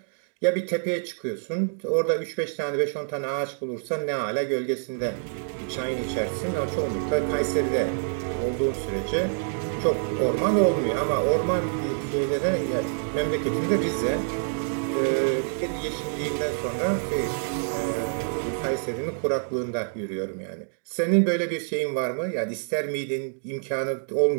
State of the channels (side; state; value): left; silent; digital silence